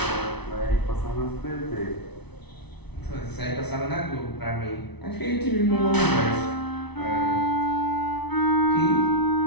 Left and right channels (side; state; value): right; late; 0.99 ms